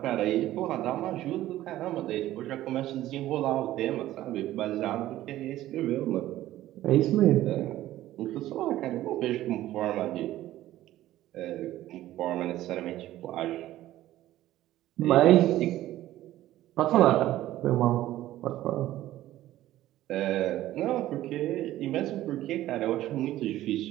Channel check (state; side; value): quieter; left; 14.5 dB